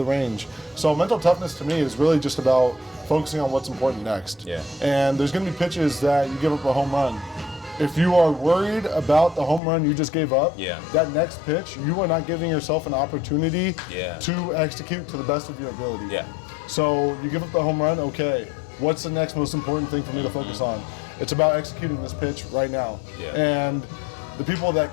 range. So mental toughness to me is really just about focusing on what's important next. Yeah. And there's going to be pitches that you give up a home run. If you are worried about the home run you just gave up, that next pitch, you are not giving yourself an opportunity to execute to the best of your ability. Yeah. So you give up the home run, okay, what's the next most important thing for me to focus on? It's about executing this pitch right now. Yeah. And the people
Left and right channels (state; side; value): drops out; right; at 9.6 s